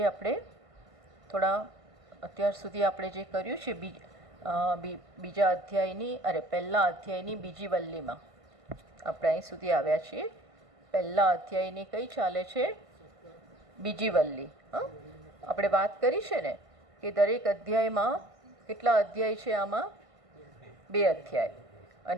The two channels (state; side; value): late; left; 1.5 ms